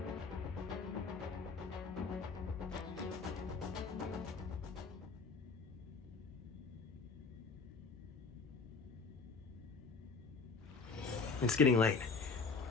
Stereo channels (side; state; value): right; quieter; 4.5 dB